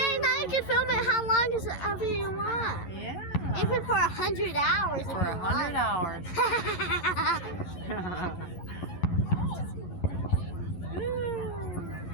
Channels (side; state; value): right; late; 11 ms